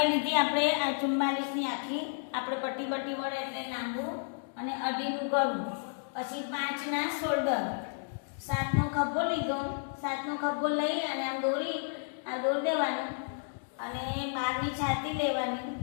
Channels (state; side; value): silent; right; digital silence